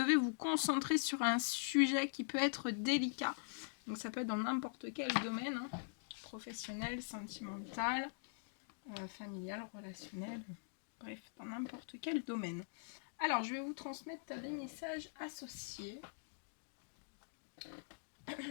vous concentrer sur un sujet qui peut être délicat. Donc ça peut être dans n'importe quel domaine, professionnel, sentimental, familial, relationnel, bref, dans n'importe quel domaine. Alors, je vais vous transmettre des messages associés.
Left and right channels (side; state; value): right; silent; digital silence